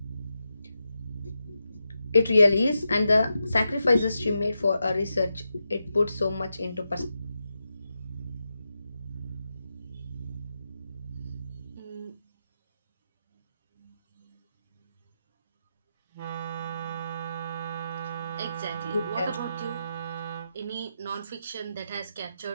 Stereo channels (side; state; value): both; inverted; correlation -0.87